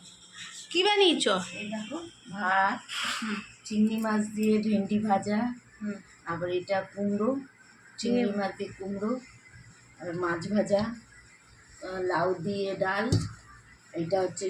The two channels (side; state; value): both; identical; correlation 1.00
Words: কি বানিয়েছ? এই দেখো ভাত, চিংড়ি মাছ দিয়ে ভেন্ডি ভাজা, আবার এটা কুমড়ো, চিংড়ি মাছ দিয়ে কুমড়ো, আর মাছ ভাজা, লাউ দিয়ে ডাল, এটা হচ্ছে